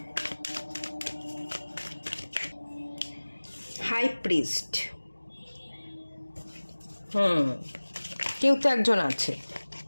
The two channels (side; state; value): both; inverted; correlation -1.00